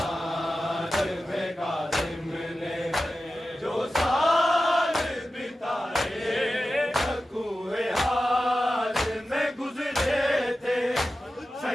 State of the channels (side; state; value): both; normal; correlation 0.94